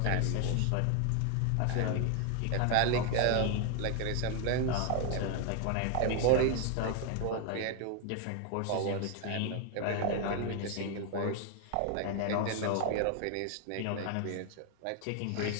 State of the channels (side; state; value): both; different; correlation 0.00